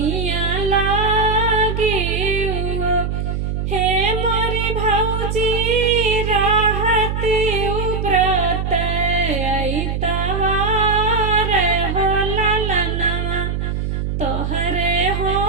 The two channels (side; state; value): right; noise; hum, 2 dB below the sound